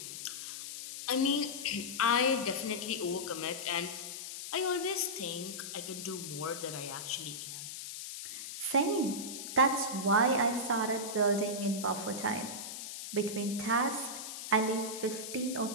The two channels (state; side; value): noise; left; hiss, 8 dB below the sound